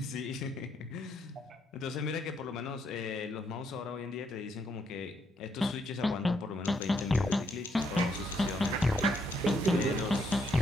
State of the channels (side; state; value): both; normal; correlation 0.74